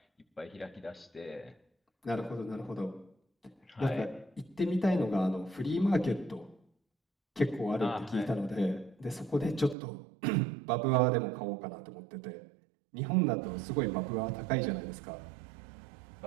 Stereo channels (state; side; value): drops out; left; at 9.8 s